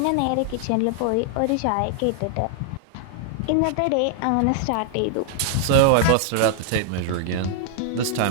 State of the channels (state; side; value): different; both; correlation 0.00